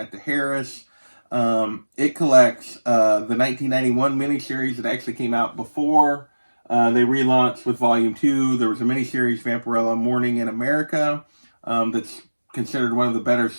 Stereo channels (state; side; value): inverted; both; correlation -1.00